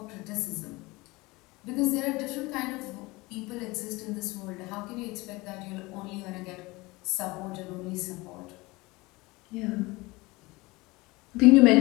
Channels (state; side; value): quieter; right; 22.7 dB